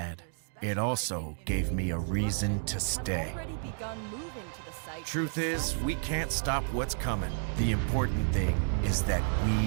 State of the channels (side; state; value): left; silent; 55 dB below the other